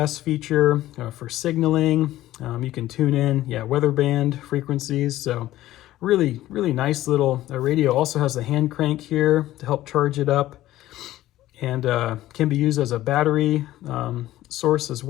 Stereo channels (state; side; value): quieter; right; 15.0 dB